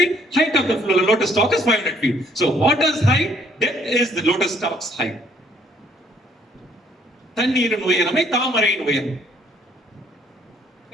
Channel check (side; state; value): both; normal; correlation 0.64